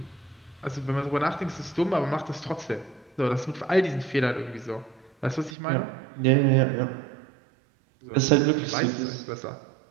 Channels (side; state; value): left; drops out; at 5.6 s